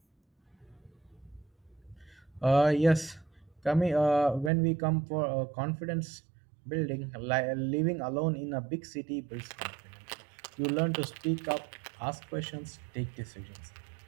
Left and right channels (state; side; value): drops out; left; at 4.5 s